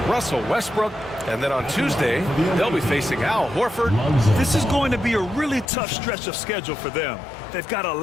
Russell Westbrook. And then on Tuesday, they'll be facing Al Horford. This is going to be a really tough stretch of schedule for them. They've got a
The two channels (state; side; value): drops out; right; at 5.7 s